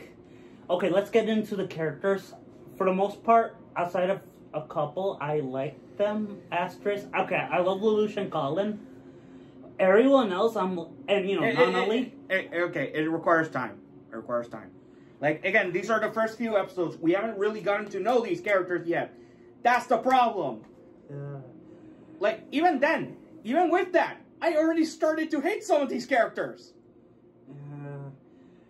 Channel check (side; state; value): both; identical; correlation 1.00